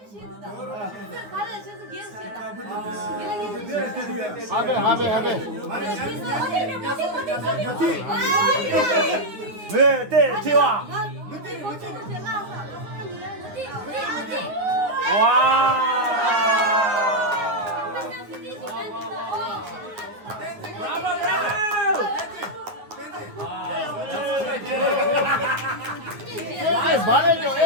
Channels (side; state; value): left; late; 9.5 ms